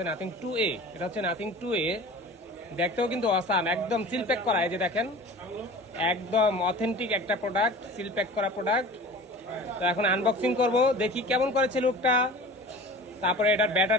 নাথিং 2A। এটা হচ্ছে নাথিং 2A, দেখতেও কিন্তু অসাম, একদম সিল প্যাক করা। এই যে দেখেন, একদম অথেন্টিক একটা প্রোডাক্ট, সিল প্যাক করা প্রোডাক্ট। তো এখন আনবক্সিং করব, দেখি কেমন করেছে লুকটা, তারপরে এটার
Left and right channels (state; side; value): normal; both; correlation 0.39